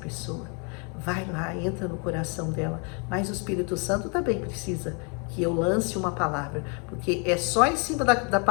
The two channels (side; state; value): right; quieter; 35.6 dB